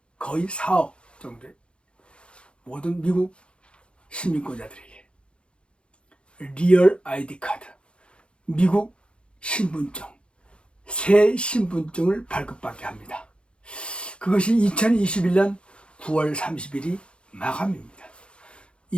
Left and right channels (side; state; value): right; late; 0.057 ms